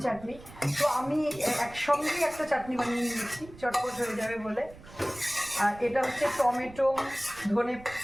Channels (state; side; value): noise; right; rumble, 19 dB below the sound